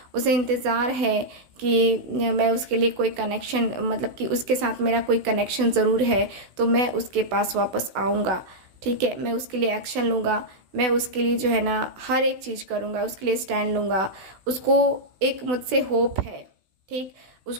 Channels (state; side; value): late; left; 16 ms